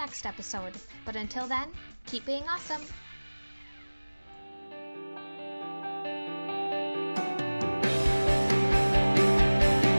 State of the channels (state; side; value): inverted; both; correlation -1.00